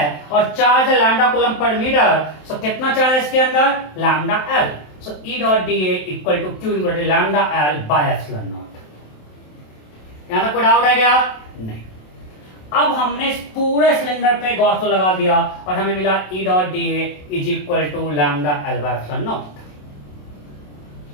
और चार्ज है lambda coulomb पर metre, so कितना charge है इसके अंदर? Lambda L. So E dot dA equal to Q equal to lambda L by epsilon naught. यहां तक कोई डाउट है क्या? नहीं। अब हमने इस पूरे सिलेंडर पे गॉस लॉ लगा दिया और हमें मिला E dot dA is equal to lambda L by epsilon naught.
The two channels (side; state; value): right; late; 27 ms